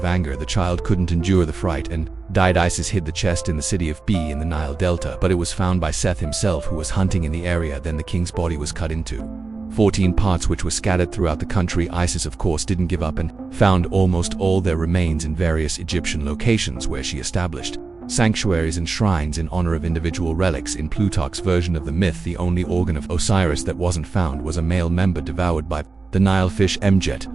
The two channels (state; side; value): quieter; left; 4.0 dB